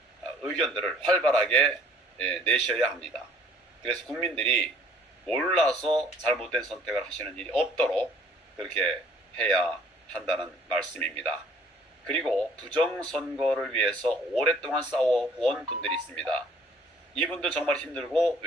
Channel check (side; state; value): both; normal; correlation 0.56